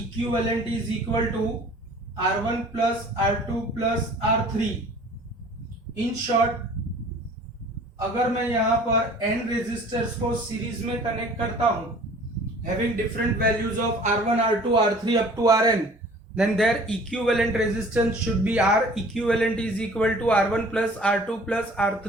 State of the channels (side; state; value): both; normal; correlation 0.49